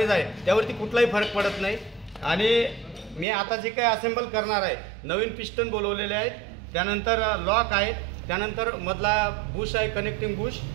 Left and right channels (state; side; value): drops out; left; at 3.2 s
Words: आहे त्यावरती कुठलाही फरक पडत नाही। आणि मी आता जे काही असेंबल करणार आहे, नवीन पिस्टन बोलवलेले आहेत, त्यानंतर लॉक आहेत, त्यानंतर मधला बुश आहे कनेक्टिंग बुश